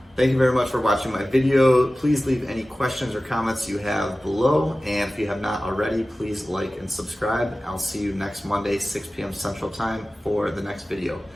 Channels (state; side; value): normal; both; correlation 0.96